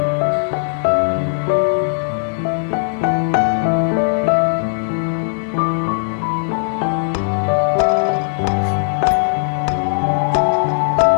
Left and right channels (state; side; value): silent; right; 68 dB below the other